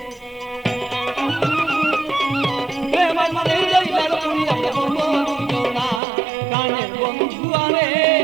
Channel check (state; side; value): drops out; left; at 6.0 s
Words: প্রেম মনে জইলার পুরিয়া বন্ধু দুইজনা প্রাণের বন্ধু আরে,